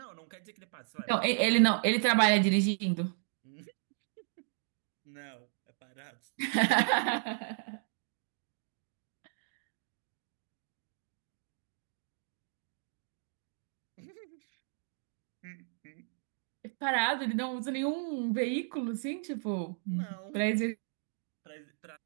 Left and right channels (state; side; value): silent; left; digital silence